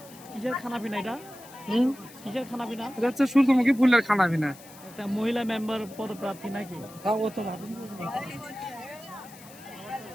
কিসের খানা পিনা এটা কিসের খানা পিনা এটা হচ্ছে সূর্যমুখী ফুলের খানা পিনা একটা মহিলা মেম্বার পদপ্রার্থী নাকি ও তো ভাবি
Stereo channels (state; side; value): noise; left; hiss, 20 dB below the sound